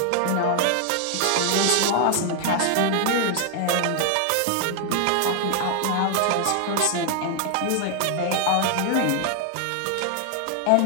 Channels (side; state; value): both; different; correlation 0.00